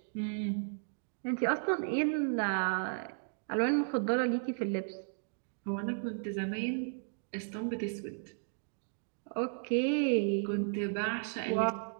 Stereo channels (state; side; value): silent; left; digital silence